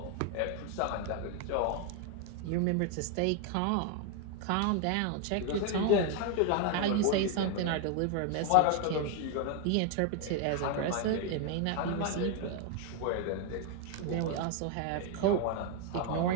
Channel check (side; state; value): both; different; correlation 0.01